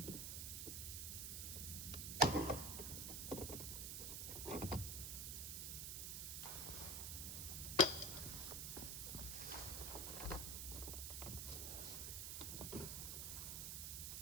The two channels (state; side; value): noise; right; hiss, 2 dB below the sound